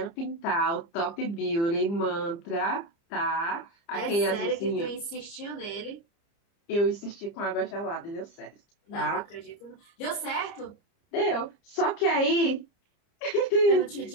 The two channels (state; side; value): late; right; 30 ms